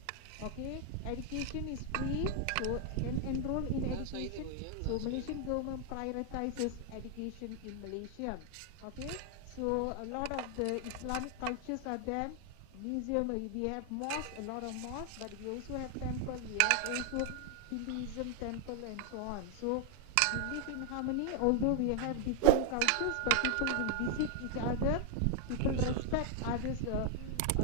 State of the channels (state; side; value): different; both; correlation 0.00